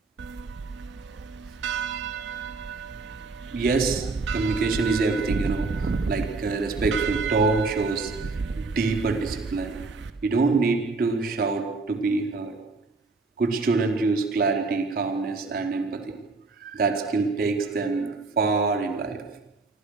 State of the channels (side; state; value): left; quieter; 3.8 dB